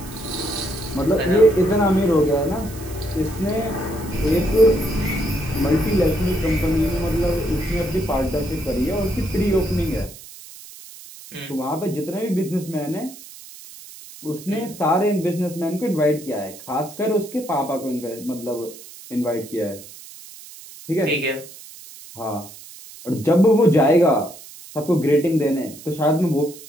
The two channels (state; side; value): noise; right; hiss, 17 dB below the sound